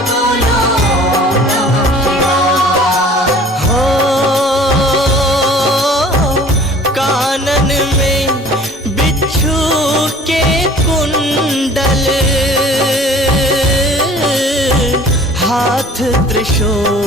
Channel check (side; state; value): both; normal; correlation 0.49